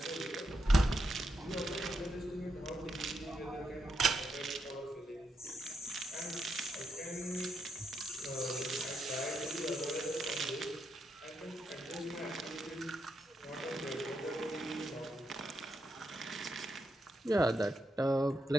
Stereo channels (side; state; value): both; normal; correlation 0.83